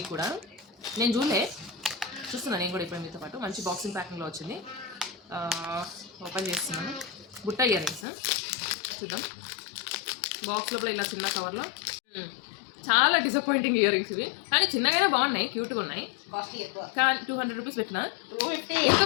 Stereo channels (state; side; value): drops out; right; at 8.1 s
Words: కూడా. నేను చూస్తున్నాను నేను కూడా ఇప్పుడు మీతో పాటు. మంచి బాక్సింగ్ ప్యాకింగ్లో వచ్చింది. ఓపెన్ చేస్తున్నాను. బుట్ట ఇయర్ రింగ్స్ చూద్దాం. బాక్స్ లోపల ఇలా చిన్న కవర్లో చాలా డిసప్పాయింటింగ్ ఇయర్ రింగ్స్ ఇవి. కానీ చిన్నగానే బాగున్నాయి, క్యూట్గా ఉన్నాయి. కానీ 200 రూపీస్ పెట్టినా